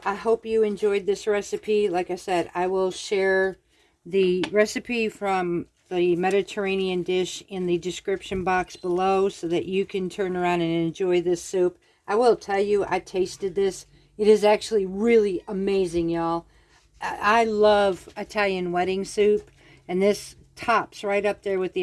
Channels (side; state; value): both; identical; correlation 1.00